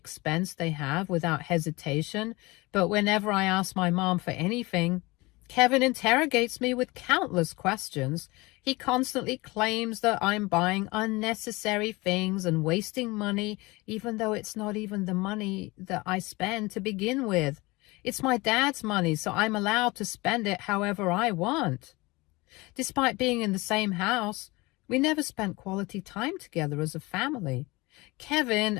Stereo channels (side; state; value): right; quieter; 23.2 dB